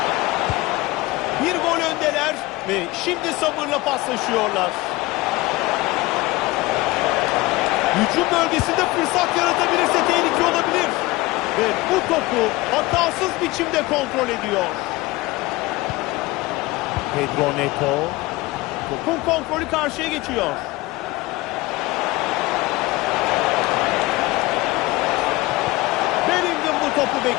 Bir gol öndeler ve şimdi sabırla paslaşıyorlar. Hücum bölgesinde fırsat yaratabilirse tehlike olabilir. Ve bu topu hatasız biçimde kontrol ediyor. Pedro Neto. Topun kontrolü karşıya geçiyor. Bellingham bu topu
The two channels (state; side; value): quieter; right; 20.7 dB